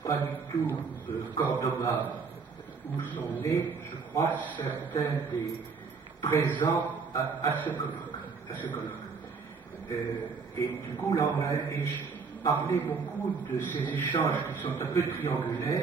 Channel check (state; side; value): quieter; left; 5.1 dB